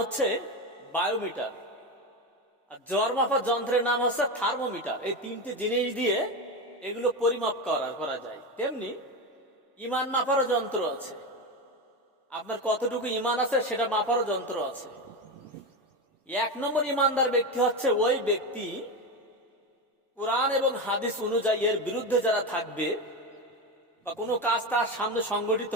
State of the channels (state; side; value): normal; both; correlation 0.17